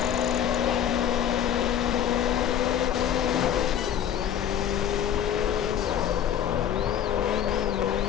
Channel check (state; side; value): quieter; right; 9.5 dB